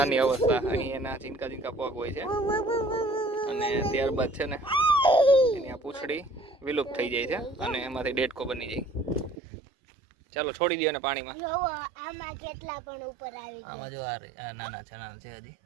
અવસ્થા અહીં એના ઝીંકા ઝીંકા પગ હોય છે અને ત્યારબાદ છે ને એની આ પૂંછડી વિલુપ્ત થઈ જાય છે અને એમાંથી ડેડકો બની જાય ચાલો છોડી દો ને પાણીમાં જોવો આમાં કેટલા પણ ઉપર આવી ગયા આમાં જો આ નાના છે હજી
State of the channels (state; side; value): drops out; left; at 9.3 s